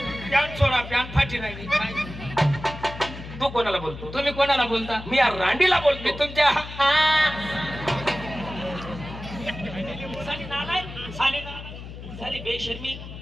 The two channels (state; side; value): noise; left; hum, 12 dB below the sound